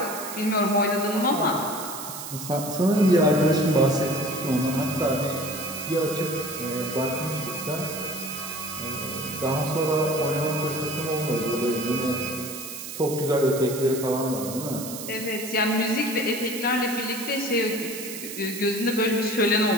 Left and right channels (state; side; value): noise; right; hiss, 9 dB below the sound